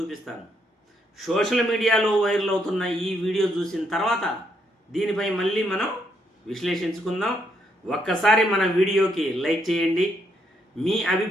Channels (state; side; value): normal; both; correlation 0.75